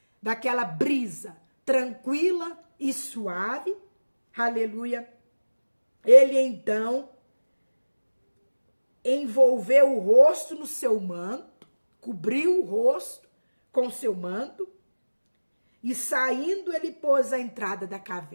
daquela brisa tranquila e suave, aleluia, ele então envolveu o rosto no seu manto, cobriu o rosto com seu manto, E saindo, ele pôs a entrada da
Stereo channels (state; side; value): inverted; both; correlation -1.00